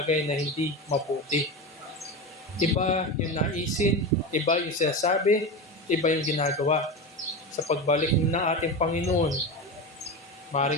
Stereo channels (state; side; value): normal; both; correlation 0.23